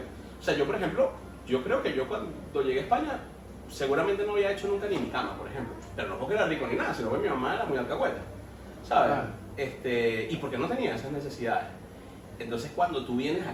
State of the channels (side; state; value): both; identical; correlation 1.00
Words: o sea, yo por ejemplo, yo creo que yo cuando llegué a España, seguramente no había hecho nunca ni mi cama, por ejemplo. Pero no porque era rico ni nada, sino porque mi mamá era muy alcahueta, ¿sabes? Y porque no tenía esas necesidades. Entonces cuando tú vienes